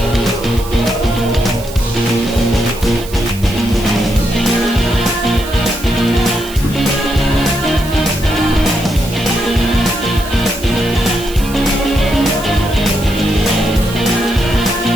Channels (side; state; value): right; noise; hiss, 15 dB below the sound